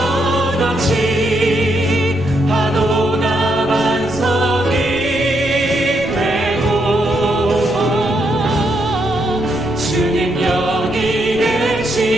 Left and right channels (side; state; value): right; noise; rumble, 15 dB below the sound